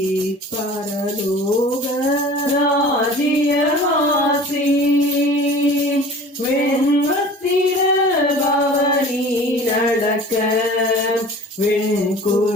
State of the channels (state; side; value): normal; both; correlation 0.42